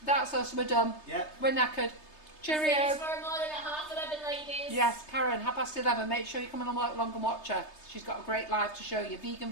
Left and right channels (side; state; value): right; late; 3.3 ms